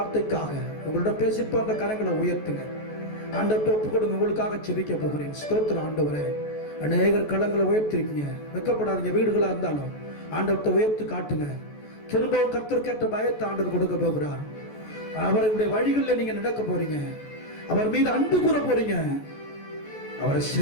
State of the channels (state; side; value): late; right; 14 ms